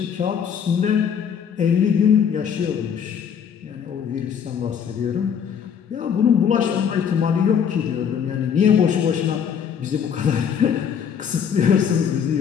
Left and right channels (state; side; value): quieter; right; 7.7 dB